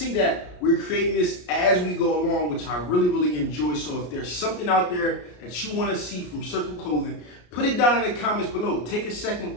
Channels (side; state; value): right; late; 33 ms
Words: that we're creating this as we go along, which I really enjoy. So if there's something out there that you wanna see from Circle Clothing, put it down in the comments below. Take a second,